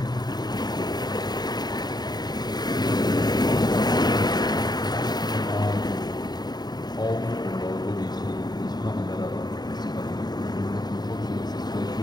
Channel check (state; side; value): late; right; 0.20 ms